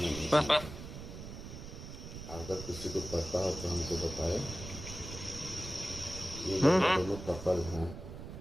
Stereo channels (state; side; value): noise; right; rumble, 10 dB below the sound